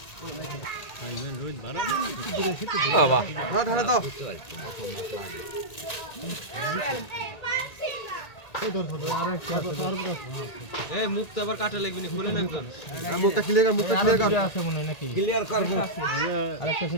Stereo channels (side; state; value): right; late; 1.8 ms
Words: মুখটা আবার কাটা লাগবে না খুলে লাগবে মুখটা ক্লিয়ার আছে মনে হয় নাকি ক্লিয়ার কর আরেকটা